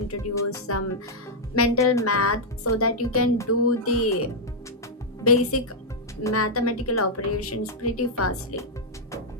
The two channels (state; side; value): normal; both; correlation -0.05